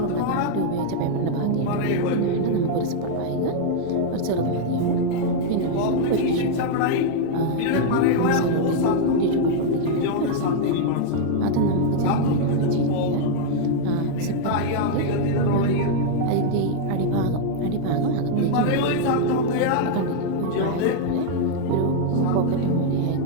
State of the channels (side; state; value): both; different; correlation 0.00